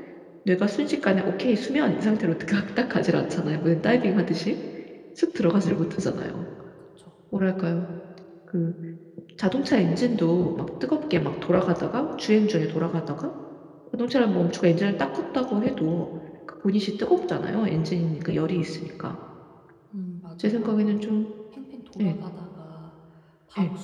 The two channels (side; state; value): both; identical; correlation 1.00